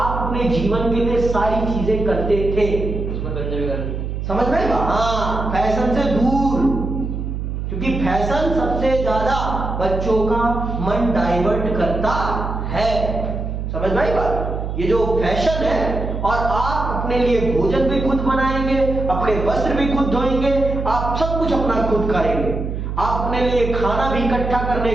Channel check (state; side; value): noise; right; hum, 4 dB below the sound